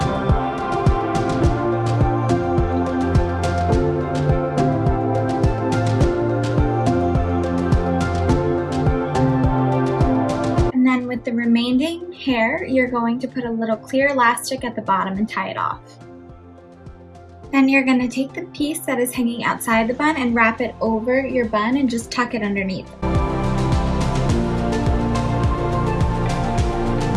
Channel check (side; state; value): both; identical; correlation 1.00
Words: With the remaining hair, you're going to put a little clear elastic at the bottom and tie it off. Then you're going to take the piece that is hanging outside the bun and wrap it over your bun and just tuck it underneath.